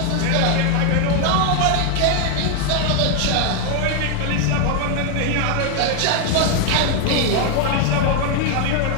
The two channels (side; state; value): both; different; correlation 0.00